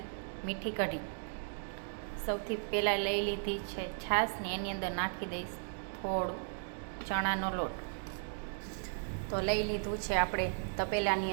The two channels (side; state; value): left; silent; digital silence